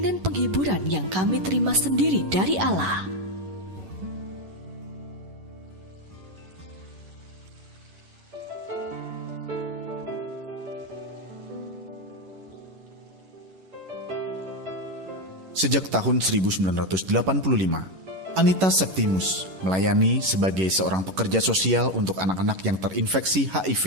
penghiburan yang kami terima sendiri dari Allah. Sejak tahun 1985, Anita Septimus melayani sebagai seorang pekerja sosial untuk anak-anak yang terinfeksi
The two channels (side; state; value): left; late; 11 ms